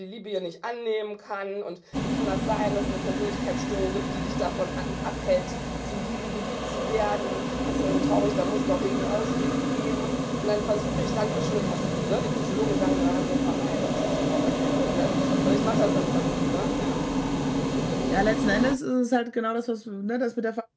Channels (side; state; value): both; identical; correlation 1.00